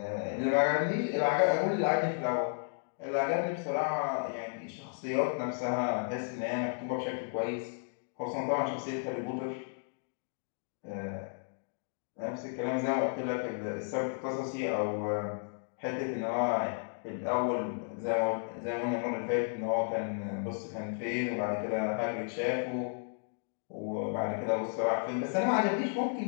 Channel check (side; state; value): right; silent; digital silence